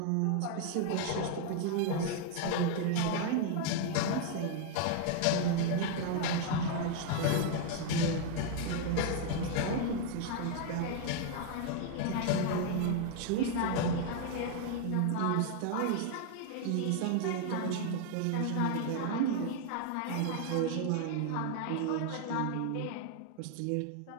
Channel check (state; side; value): different; both; correlation 0.00